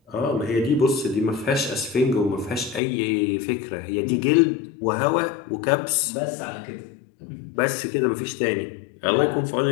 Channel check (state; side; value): drops out; right; at 2.8 s